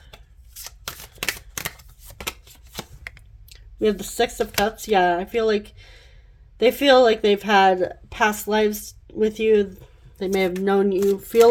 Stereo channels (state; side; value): identical; both; correlation 1.00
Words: We have the Six of Cups. Yeah, I feel like they feel like they've had past lives with you. They may have known you,